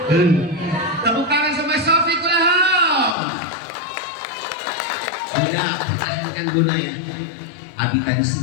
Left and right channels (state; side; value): drops out; right; at 3.2 s